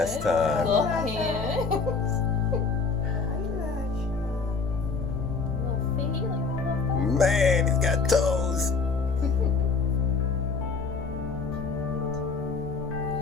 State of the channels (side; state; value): right; quieter; 4.7 dB